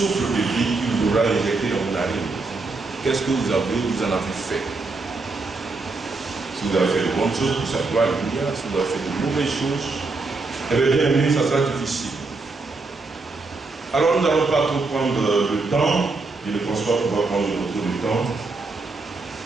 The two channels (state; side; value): quieter; left; 3.7 dB